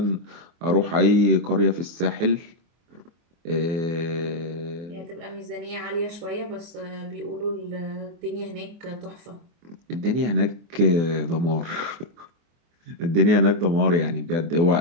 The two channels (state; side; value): late; left; 24 ms